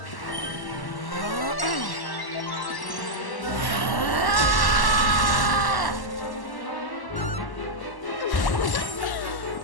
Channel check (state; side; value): late; right; 1.1 ms